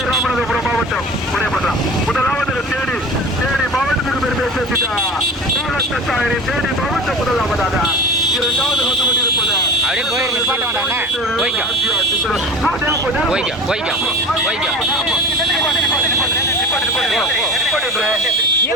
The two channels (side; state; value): both; normal; correlation 0.36